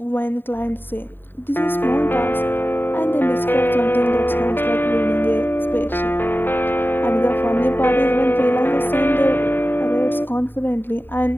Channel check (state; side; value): late; right; 0.096 ms